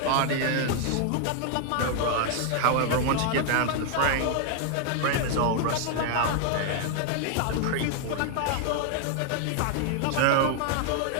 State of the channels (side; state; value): both; different; correlation 0.00